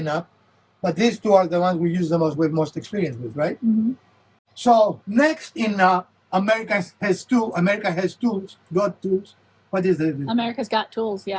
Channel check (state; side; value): identical; both; correlation 1.00